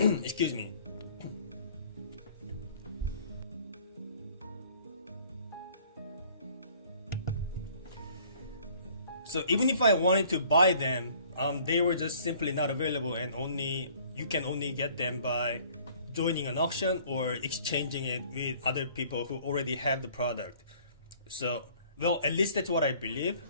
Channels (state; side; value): inverted; both; correlation -0.55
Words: Excuse me. So even if I wanted to buy them, they were just simply not available, and you can only get them by joining an auction or exchanging it with other people who already have the product. So, well, at least that's what I believe.